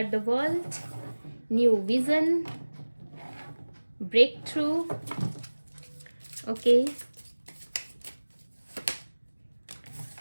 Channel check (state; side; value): inverted; both; correlation -1.00